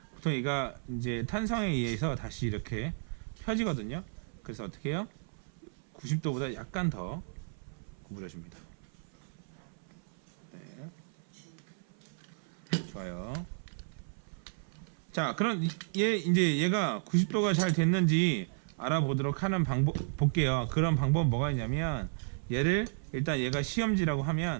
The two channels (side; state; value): left; silent; 56 dB below the other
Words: 보통 얘가 이제 탄성에 의해서 다시 이렇게 펴지거든요. 그래서 어떻게 해요? 90도보다 약간 더 구부려줍니다. 네. 좋아요. 자, 그럼 이제 얘가 90도가 잘 됐는지 알아보도록 하는 방법 볼게요. 그런 방법은 뭐가 있냐면 얘를 일단 얘가 시험지라고